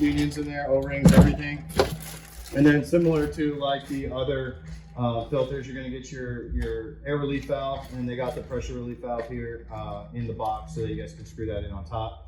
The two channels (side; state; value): both; identical; correlation 1.00